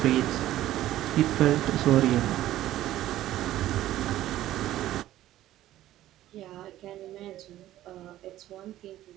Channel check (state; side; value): quieter; left; 14.0 dB